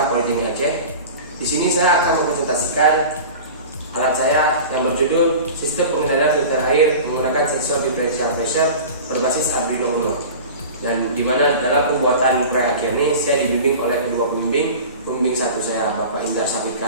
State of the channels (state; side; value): inverted; both; correlation -0.36